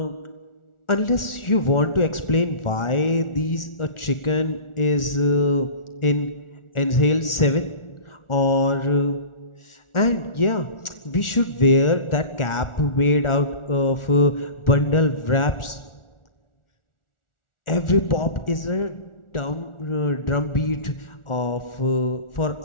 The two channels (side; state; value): right; late; 1.4 ms